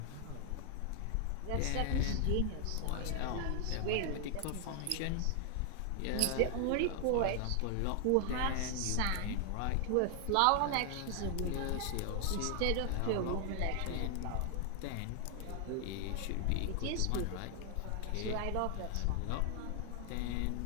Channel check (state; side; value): different; both; correlation 0.00